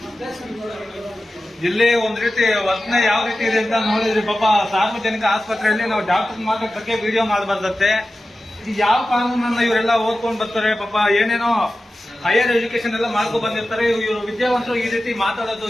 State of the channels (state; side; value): normal; both; correlation 0.94